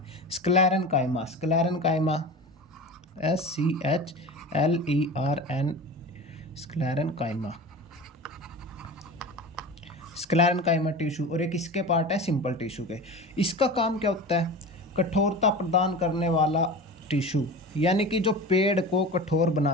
Sclerenchyma. Sclerenchyma SCHLERN। Sclerenchyma. Sclerenchyma tissue, और ये किसके पार्ट है, सिंपल टिश्यू के। इसका काम क्या होता है, कठोरता प्रदान करने वाला टिश्यू, यानी कि जो पेड़ को कठोर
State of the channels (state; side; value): normal; both; correlation 0.32